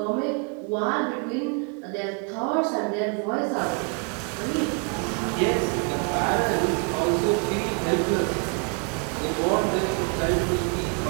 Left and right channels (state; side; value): quieter; left; 36.1 dB